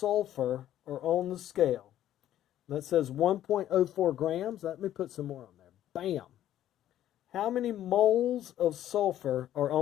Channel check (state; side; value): quieter; right; 12.2 dB